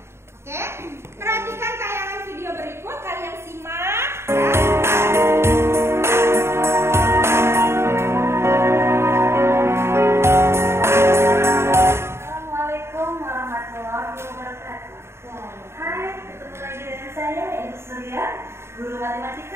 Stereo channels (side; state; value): left; late; 0.12 ms